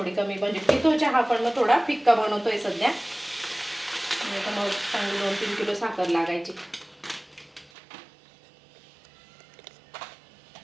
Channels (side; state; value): left; drops out; at 7.7 s